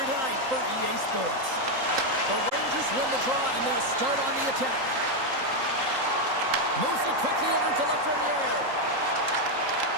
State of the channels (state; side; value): late; left; 3.8 ms